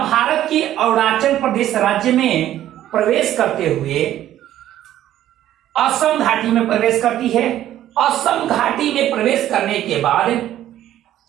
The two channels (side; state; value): left; quieter; 12.5 dB